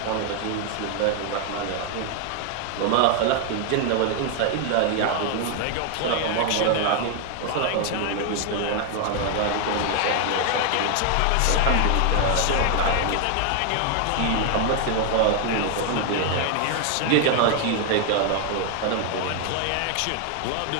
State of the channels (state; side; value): different; both; correlation 0.00